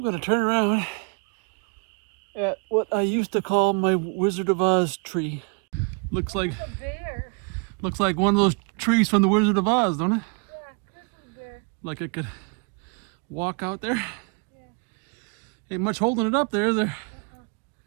going to turn around at what I used to call my Wizard of Oz tree. Looks like one of those trees from the Wizard of Oz, don't it? Yeah, this is there. Like I could walk out there. Yeah. Ain't much holding it up there, is there?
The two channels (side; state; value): left; quieter; 36.5 dB